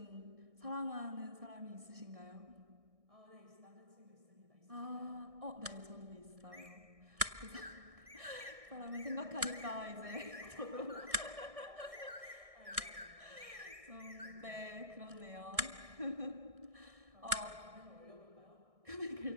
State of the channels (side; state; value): left; late; 1.6 ms